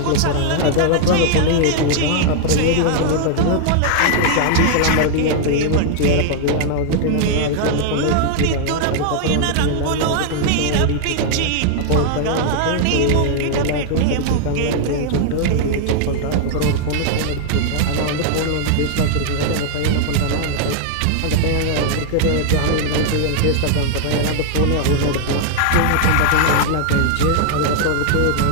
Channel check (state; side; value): different; both; correlation 0.00